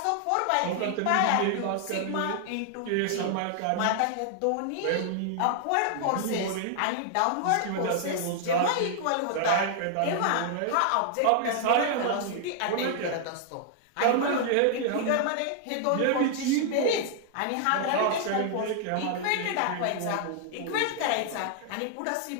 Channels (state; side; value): different; both; correlation 0.00